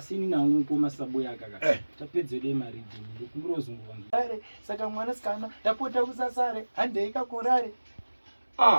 nangu pomasa Buyaka ka tapedze de maridhi ndokumurozungwa saka mwana sikana tapota usasare handei kakurare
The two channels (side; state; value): both; inverted; correlation -1.00